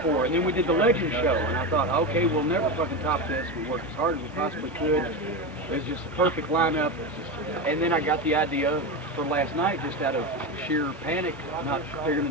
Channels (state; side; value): normal; both; correlation 0.18